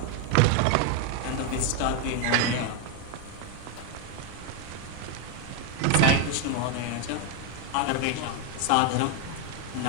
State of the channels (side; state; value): both; different; correlation 0.01